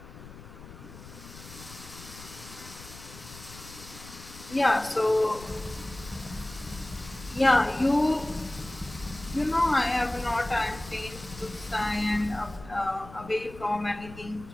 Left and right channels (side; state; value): left; noise; rumble, 16 dB below the sound